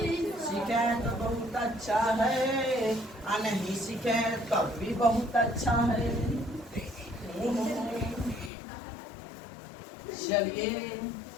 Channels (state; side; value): drops out; right; at 8.5 s